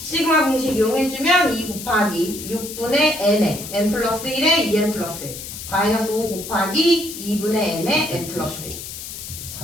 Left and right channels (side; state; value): left; noise; hiss, 10 dB below the sound